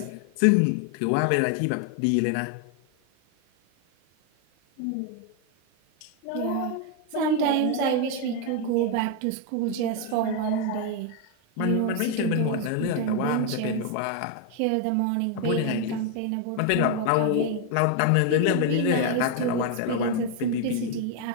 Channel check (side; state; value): both; different; correlation 0.01